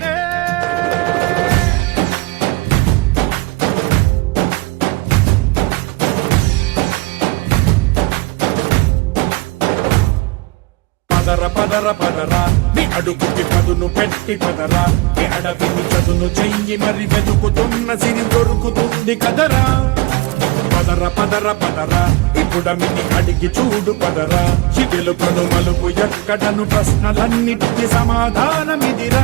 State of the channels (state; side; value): quieter; left; 22.5 dB